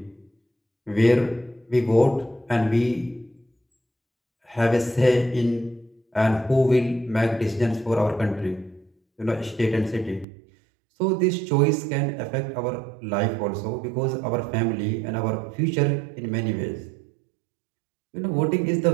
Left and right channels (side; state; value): left; drops out; at 10.2 s